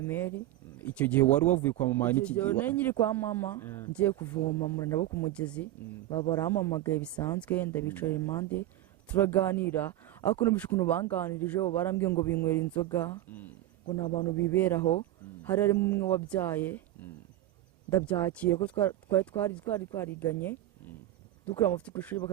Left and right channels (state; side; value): quieter; left; 14.2 dB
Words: Icyo gihe wari wavuye kwa mama n'iki gihe? Nari nyiri kwa mama ngiye kuvoma muri nabo ku mugezi barampamagaye bisanzwe ndabicara impande turaganira ariko numvise ukuntu banganirije barambwiye ngo binywera inzoga ngo ni abantu biberaho hari harimo umwe wabyaye ndabyakira ko twari twariganye dukora amafuti ku ishuri